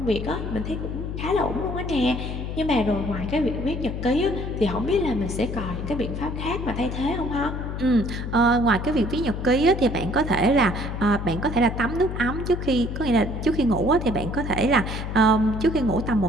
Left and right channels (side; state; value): left; noise; hum, 5 dB below the sound